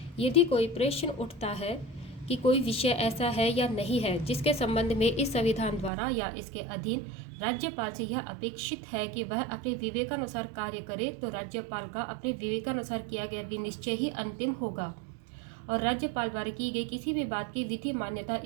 यदि कोई प्रश्न उठता है कि कोई विषय ऐसा है या नहीं है जिसके संबंध में इस संविधान द्वारा या इसके अधीन राज्यपाल से यह अपेक्षित है कि वह अपने विवेकानुसार कार्य करे, तो राज्यपाल का अपने विवेकानुसार किया गया विनिश्चय ही अंतिम होगा और राज्यपाल द्वारा की गई किसी भी बात की विधि मान्यता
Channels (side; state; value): left; drops out; at 5.9 s